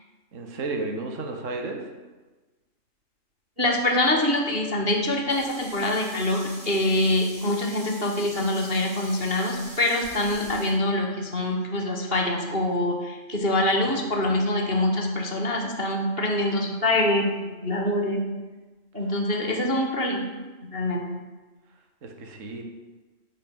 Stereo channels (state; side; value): late; left; 2.8 ms